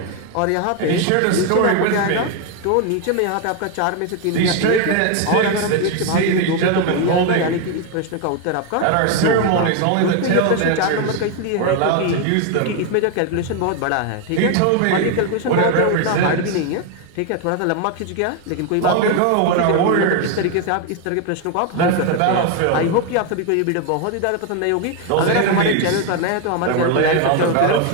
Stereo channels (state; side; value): different; both; correlation 0.01